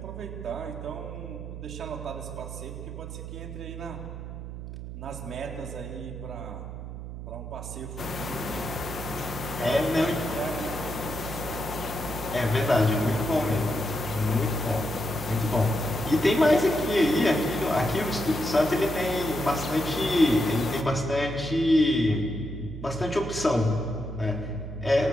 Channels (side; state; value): right; noise; hum, 9 dB below the sound